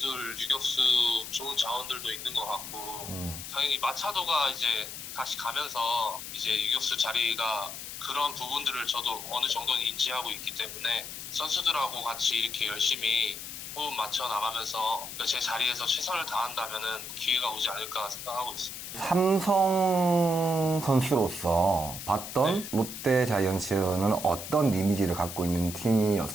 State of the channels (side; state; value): left; noise; hiss, 9 dB below the sound